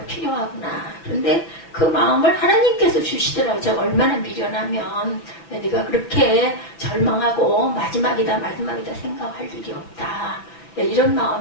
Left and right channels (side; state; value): right; late; 5.9 ms